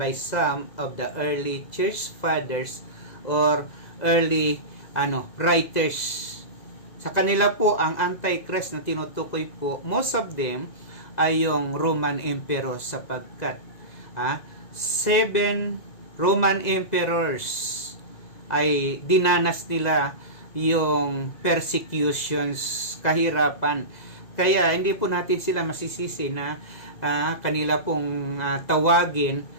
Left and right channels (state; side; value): late; right; 2.0 ms